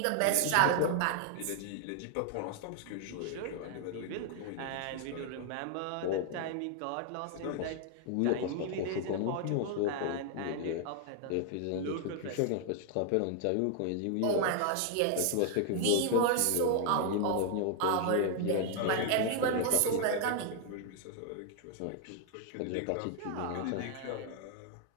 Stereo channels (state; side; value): different; both; correlation 0.00